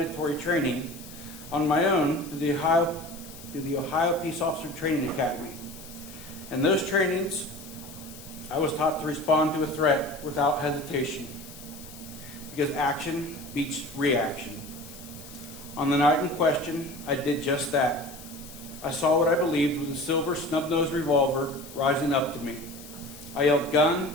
training on my own through the Ohio Peace Officer Training Academy. In those trainings, I was taught to respond to a threat without hesitation, because action beats reaction. On the night in question, I did just that. I saw what I believed was a silver snub-nosed revolver rising up to me. I yelled,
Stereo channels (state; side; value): noise; left; hiss, 17 dB below the sound